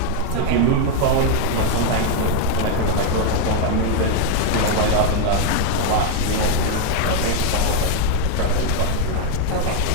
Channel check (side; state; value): both; different; correlation 0.00